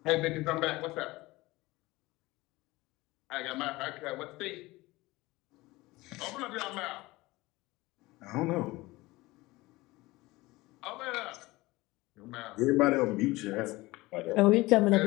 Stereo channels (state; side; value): quieter; right; 20.4 dB